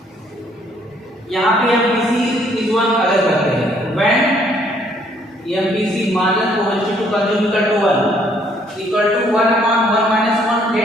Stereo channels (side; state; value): both; normal; correlation 0.65